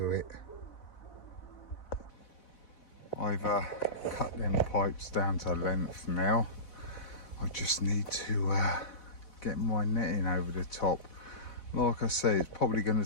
it. I've cut them pipes down to length now. I just need to get my netting over the top. Like I say, it's probably going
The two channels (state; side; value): late; right; 4.0 ms